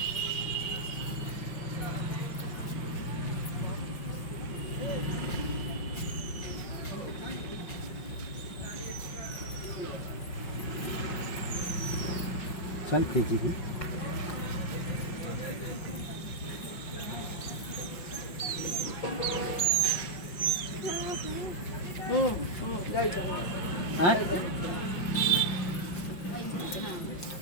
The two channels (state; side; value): late; right; 5.6 ms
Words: चल तेजी की हाँ